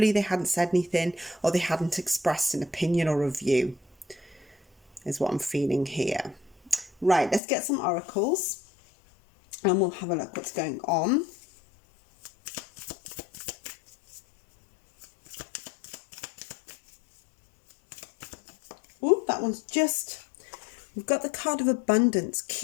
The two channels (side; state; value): right; drops out; at 7.4 s